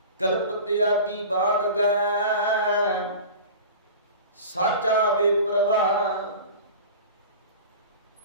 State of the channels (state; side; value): inverted; both; correlation -0.36